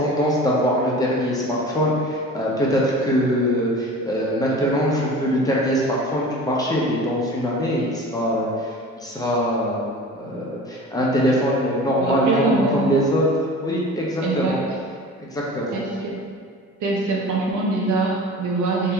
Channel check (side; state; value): both; normal; correlation 0.39